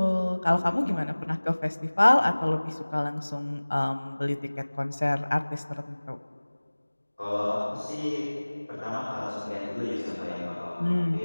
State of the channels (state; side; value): inverted; both; correlation -1.00